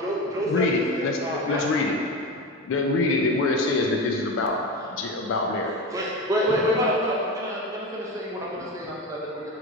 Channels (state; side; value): normal; both; correlation 0.23